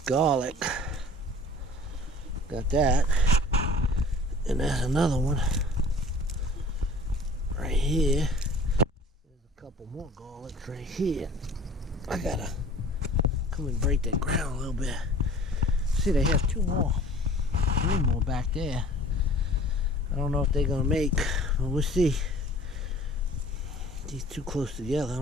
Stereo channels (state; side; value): normal; both; correlation 0.47